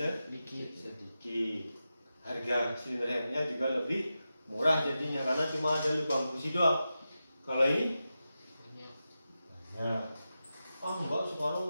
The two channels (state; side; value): inverted; both; correlation -0.91